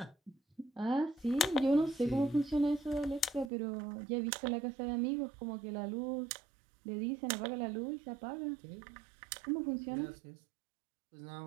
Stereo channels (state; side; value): drops out; left; at 3.5 s